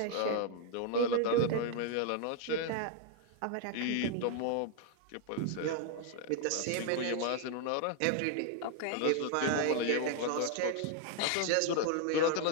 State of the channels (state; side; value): different; both; correlation 0.00